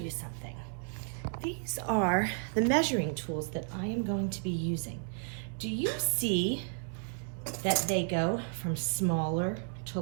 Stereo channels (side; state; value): left; silent; 56 dB below the other